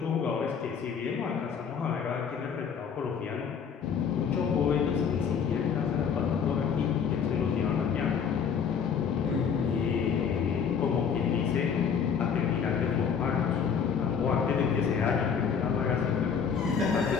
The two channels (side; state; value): right; quieter; 6.9 dB